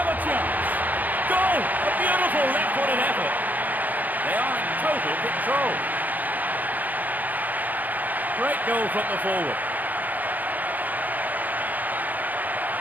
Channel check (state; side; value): late; left; 0.082 ms